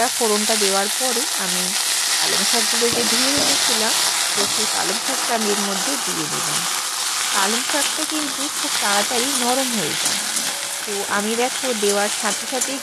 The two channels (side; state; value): both; identical; correlation 1.00